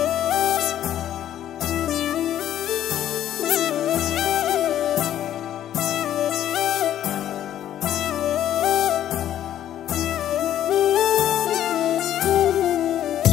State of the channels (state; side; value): quieter; right; 11.5 dB